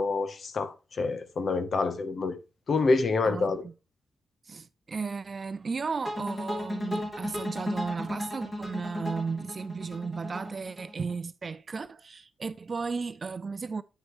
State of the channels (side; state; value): both; normal; correlation 0.86